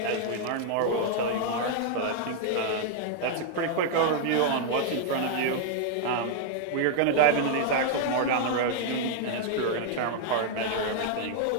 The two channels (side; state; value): both; different; correlation 0.00